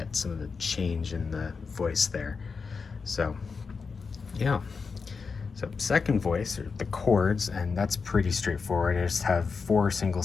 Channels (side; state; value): right; quieter; 5.1 dB